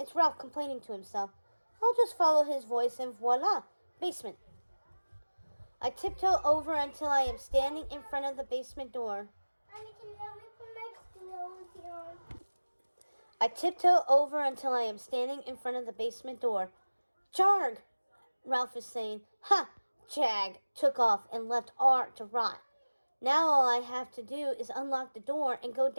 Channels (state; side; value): inverted; both; correlation -1.00